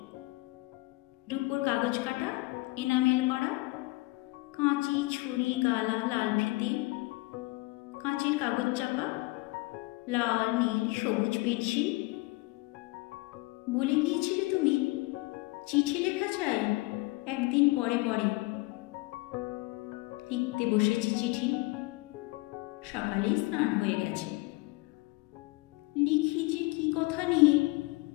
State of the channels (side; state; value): right; quieter; 22.7 dB